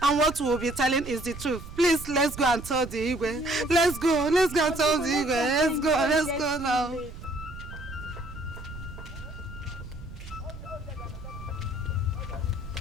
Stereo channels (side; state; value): right; noise; rumble, 13 dB below the sound